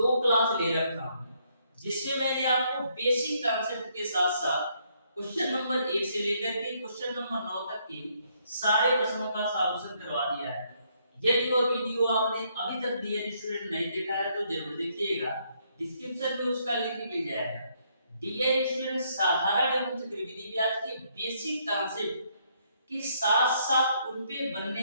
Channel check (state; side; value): inverted; both; correlation -0.71